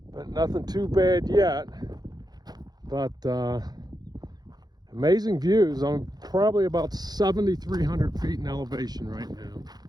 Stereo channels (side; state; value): left; late; 0.19 ms